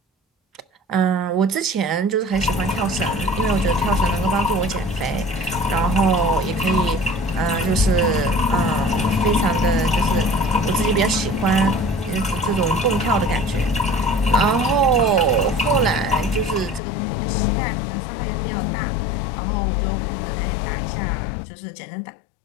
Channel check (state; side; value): drops out; right; at 16.8 s